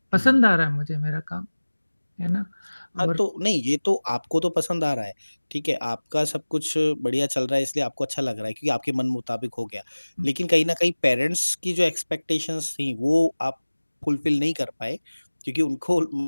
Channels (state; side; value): inverted; both; correlation -1.00